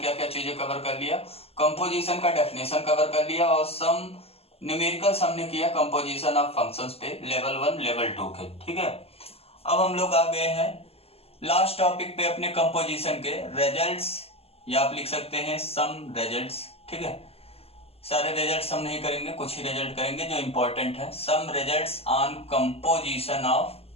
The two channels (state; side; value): late; right; 0.29 ms